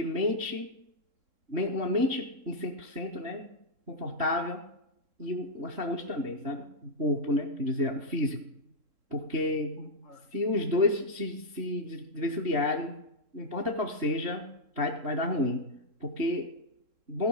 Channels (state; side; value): late; left; 3.7 ms